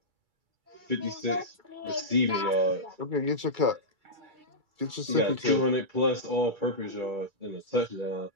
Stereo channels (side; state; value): left; late; 2.3 ms